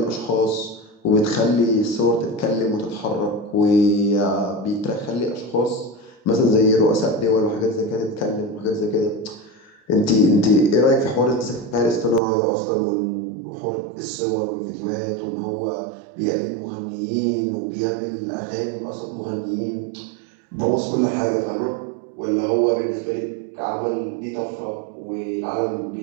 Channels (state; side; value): drops out; left; at 12.2 s